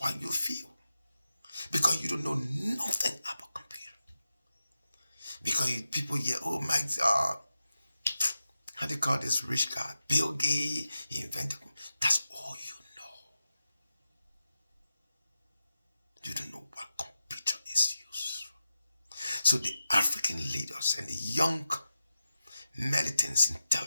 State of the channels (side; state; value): both; inverted; correlation -0.91